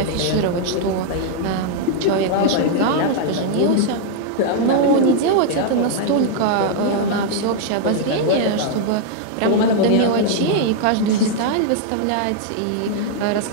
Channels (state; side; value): different; both; correlation -0.01